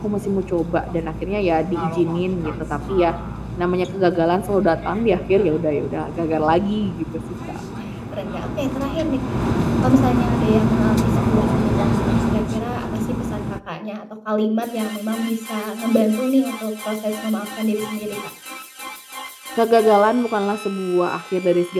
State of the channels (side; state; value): both; identical; correlation 1.00